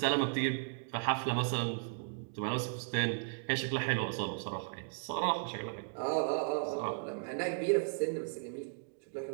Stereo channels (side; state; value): left; silent; digital silence